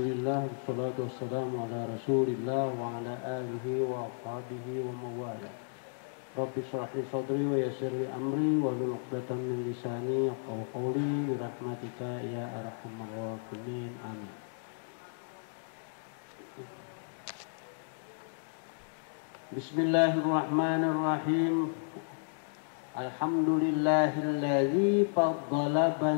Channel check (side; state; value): right; silent; digital silence